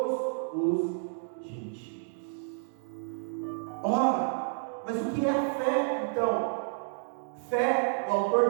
os gentios. Ora, mas o que é a fé então? Fé, o autor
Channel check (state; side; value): silent; left; digital silence